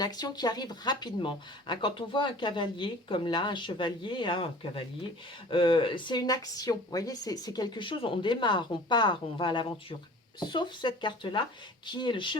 qui arrive rapidement, hein. Quand on voit un cavalier, comme là, un chevalier, hein, un cavalier, c'est une action, vous voyez, c'est quelque chose, on démarre, on part, on va à l'aventure. Sauf cette carte-là, qui est le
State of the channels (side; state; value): both; normal; correlation 0.44